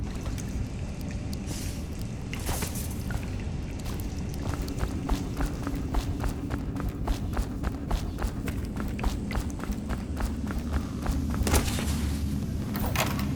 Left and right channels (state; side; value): identical; both; correlation 1.00